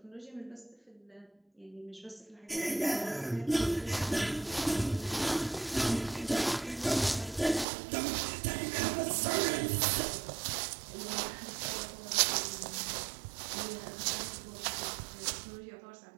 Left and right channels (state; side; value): drops out; left; at 7.7 s